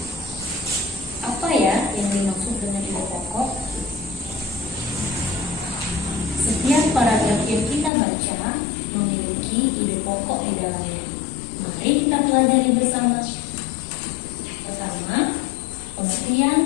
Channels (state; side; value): drops out; right; at 7.9 s